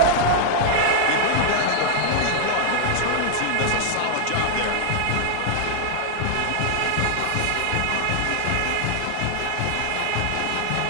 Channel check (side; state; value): both; different; correlation -0.01